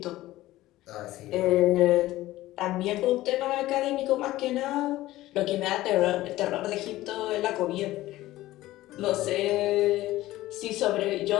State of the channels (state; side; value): quieter; right; 16.4 dB